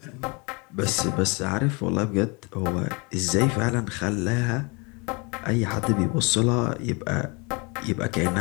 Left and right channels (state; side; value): quieter; right; 29.9 dB